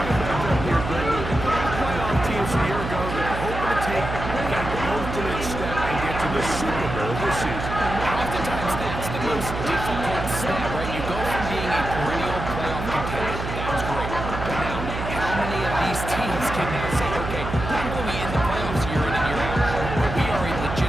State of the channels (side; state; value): right; noise; hum, 6 dB below the sound